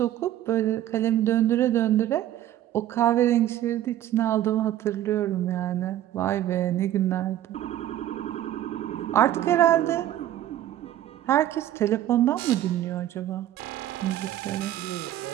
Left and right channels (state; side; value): quieter; left; 12.7 dB